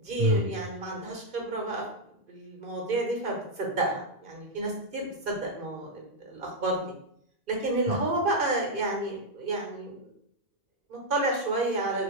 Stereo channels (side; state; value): left; late; 2.5 ms